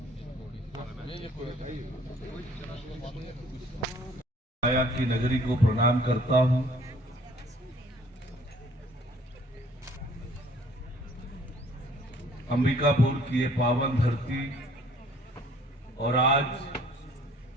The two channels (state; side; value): normal; both; correlation 0.57